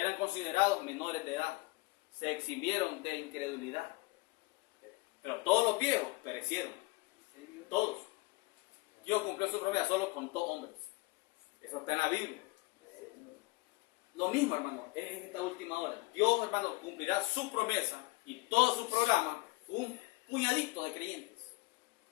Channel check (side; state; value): right; quieter; 24.1 dB